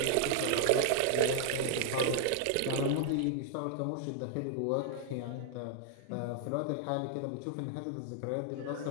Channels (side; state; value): both; different; correlation 0.00